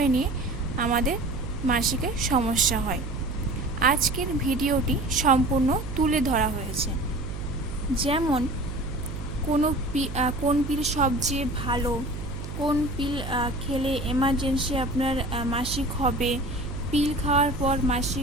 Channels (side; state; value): right; noise; hum, 8 dB below the sound